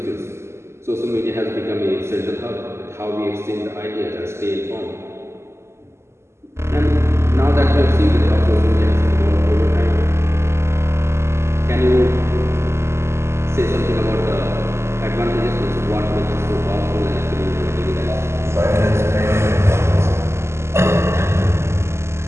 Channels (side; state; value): left; late; 0.13 ms